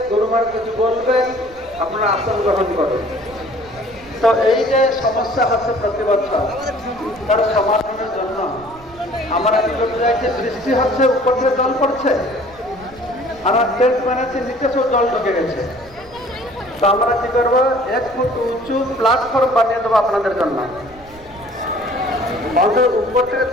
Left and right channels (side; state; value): right; noise; rumble, 23 dB below the sound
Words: গুরু মহারাজ কিছু বলবেন, আপনারা আসন গ্রহণ করুন। তো এই যে সমস্যা হচ্ছে প্রতি বছর, তার সমাধানের জন্য আমরা কি করতে চাইছি, বৃষ্টি হচ্ছে উপর থেকে জল পড়ছে, আমরা টেন্ট বানাচ্ছি নিচে সব জল ঢুকে গেছে। তো আমরা কি করবো, 1 ফুট উঁচু প্ল্যাটফর্ম বানিয়ে দেবো আপনাদের জন্য। অন্তত উপর থেকে